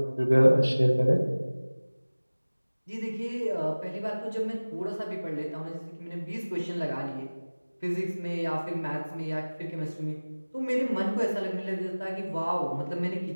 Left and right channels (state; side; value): inverted; both; correlation -1.00